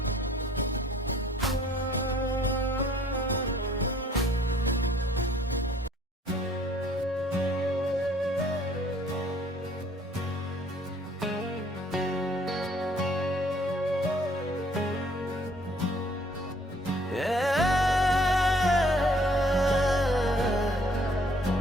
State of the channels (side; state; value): both; normal; correlation 0.60